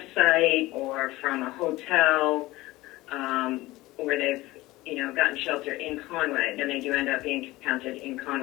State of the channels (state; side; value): quieter; right; 19.0 dB